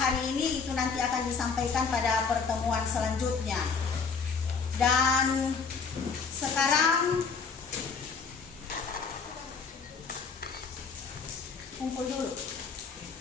ini itu nanti akan disampaikan pada pertemuan selanjutnya. Dan sekarang kumpul dulu.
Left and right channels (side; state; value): right; quieter; 5.4 dB